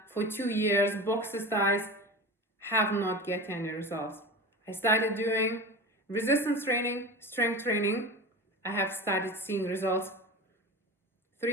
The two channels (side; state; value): both; normal; correlation 0.30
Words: for 2 years, boxer styles, have not get any results. I started doing resistance training, strength training. I have started seeing results